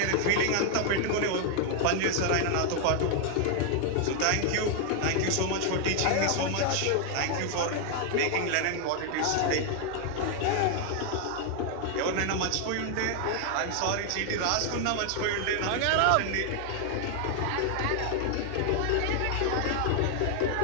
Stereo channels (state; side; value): different; both; correlation 0.00